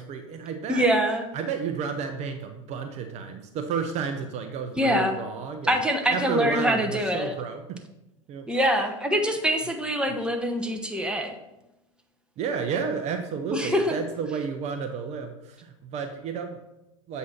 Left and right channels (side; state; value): both; normal; correlation 0.47